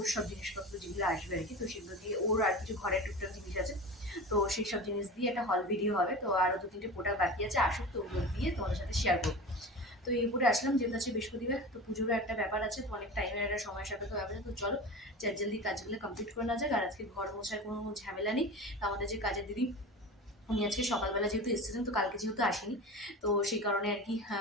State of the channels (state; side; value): normal; both; correlation 0.32